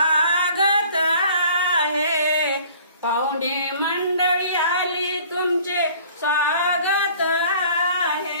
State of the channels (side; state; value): both; inverted; correlation -0.51